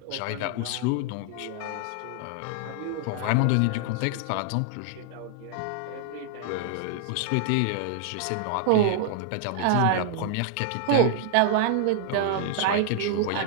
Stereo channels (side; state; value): both; different; correlation 0.00